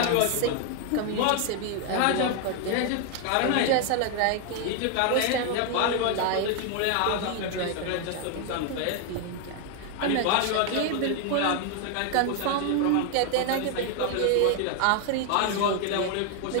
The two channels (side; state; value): both; different; correlation 0.00